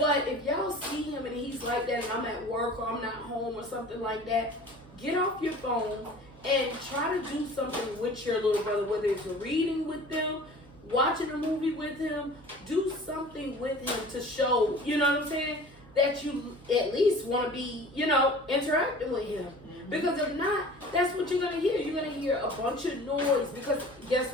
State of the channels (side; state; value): both; normal; correlation 0.44